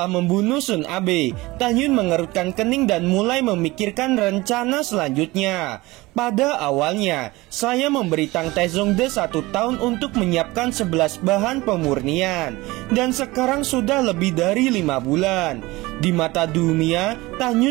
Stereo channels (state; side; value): quieter; left; 20.8 dB